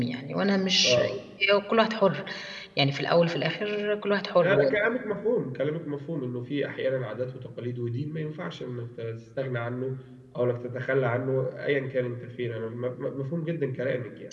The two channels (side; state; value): both; identical; correlation 1.00